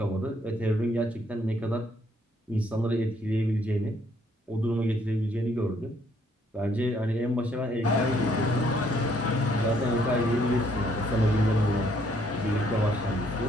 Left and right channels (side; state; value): both; normal; correlation 0.68